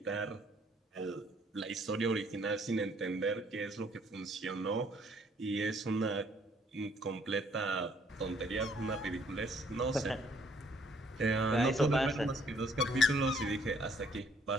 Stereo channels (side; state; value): both; normal; correlation 0.63